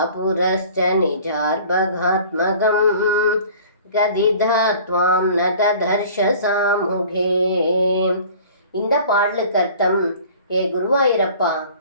நிஜார்பகாத்மகம் கதிதாத்வாம் நததர்ஷ சாமுகே. இந்த பாடலுக்கு அர்த்தம்: ஏ குருவாயூரப்பா,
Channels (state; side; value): inverted; both; correlation -0.47